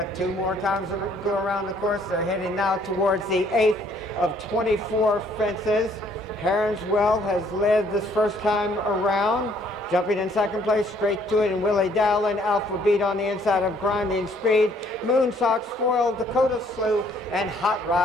2 more times to go around the course, they're heading now towards the 8th of 24 fences. Heronswell has led this first time around. Jumping in second place, Straight to It, and Willie Dowling. Alpha Beat on the inside of Grinding Speed. Moonsox, Foil, Dakota Slew, and Hot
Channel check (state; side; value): normal; both; correlation 0.63